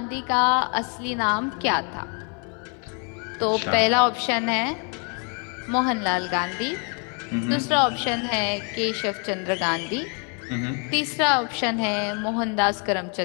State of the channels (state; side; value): quieter; right; 37.8 dB